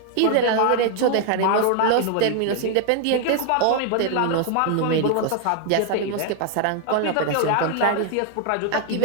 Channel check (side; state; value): both; different; correlation 0.01